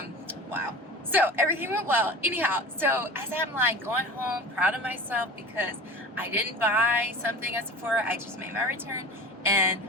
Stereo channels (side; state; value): both; normal; correlation 0.36